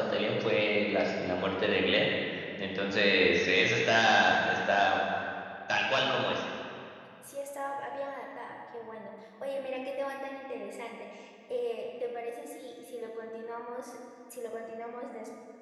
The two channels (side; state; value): both; identical; correlation 1.00